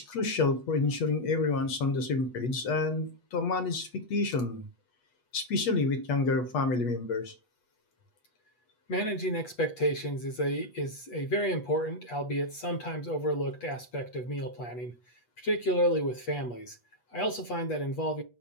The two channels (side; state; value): right; late; 8.2 ms